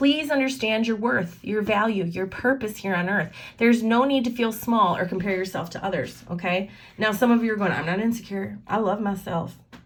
understand your worth, your value, your purpose here on earth. There's no need to feel small or compare yourself to others, okay? Now, some of you are going, I'm not insecure. I love myself.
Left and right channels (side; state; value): both; identical; correlation 1.00